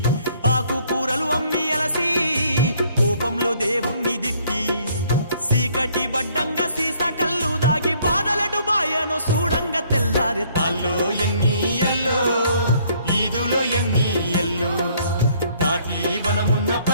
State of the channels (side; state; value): both; inverted; correlation -0.63